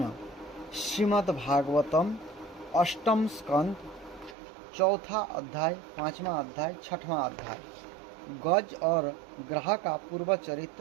श्रीमद् भागवतम अष्टम स्कंद चौथा अध्याय, पांचवा अध्याय, छठवां अध्याय। गज और ग्रह का पूर्व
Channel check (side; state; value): left; drops out; at 4.4 s